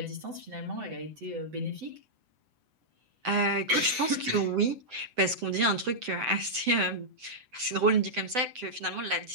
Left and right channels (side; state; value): left; late; 7.9 ms